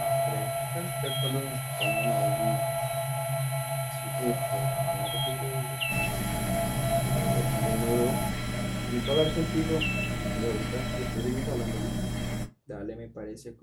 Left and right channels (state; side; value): identical; both; correlation 1.00